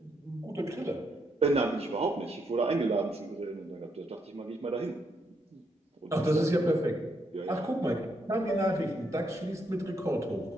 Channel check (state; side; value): normal; both; correlation 0.77